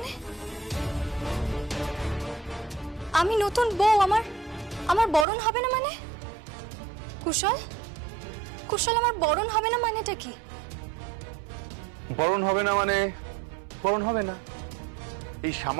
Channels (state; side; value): drops out; left; at 5.2 s